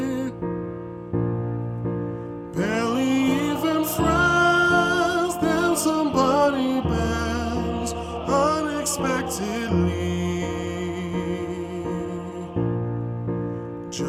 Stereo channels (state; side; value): identical; both; correlation 1.00